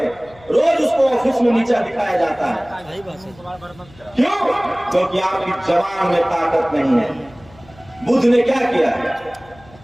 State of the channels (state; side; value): noise; left; hum, 25 dB below the sound